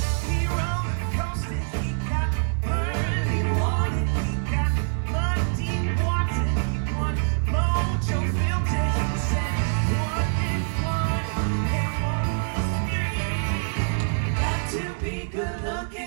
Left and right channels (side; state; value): left; silent; digital silence